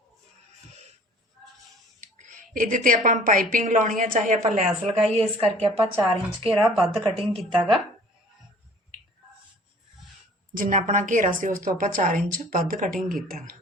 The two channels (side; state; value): both; normal; correlation 0.50